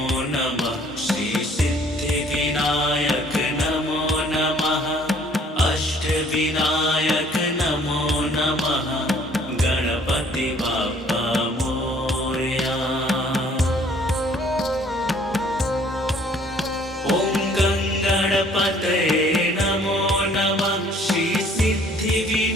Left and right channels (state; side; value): normal; both; correlation 0.58